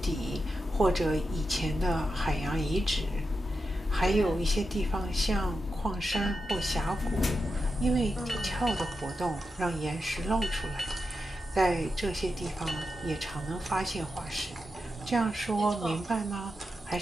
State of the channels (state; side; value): normal; both; correlation 0.89